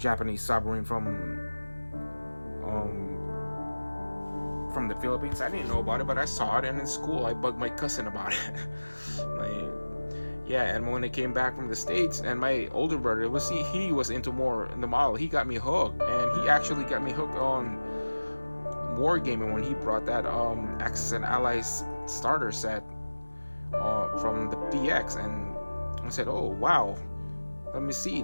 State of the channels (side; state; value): both; inverted; correlation -1.00